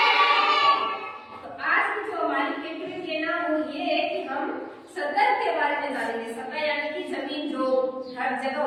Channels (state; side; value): identical; both; correlation 1.00